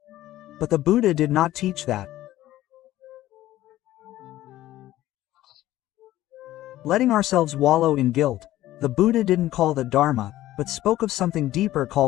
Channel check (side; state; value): right; quieter; 14.8 dB